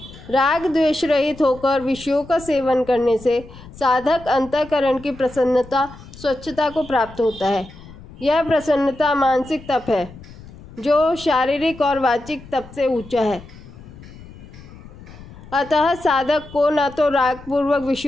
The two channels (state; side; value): noise; left; rumble, 18 dB below the sound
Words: राग द्वेष रहित होकर विषयों का सेवन करने से साधक अंतःकरण की प्रसन्नता, स्वच्छता को प्राप्त होता है। यह प्रसन्नता मानसिक तप है जो शारीरिक और वाचिक तप से ऊंचा है। अतः साधक को न तो राग पूर्वक